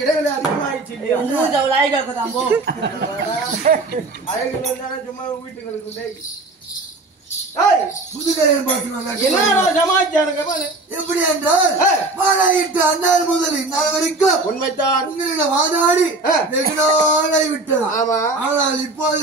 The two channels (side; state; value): left; quieter; 3.2 dB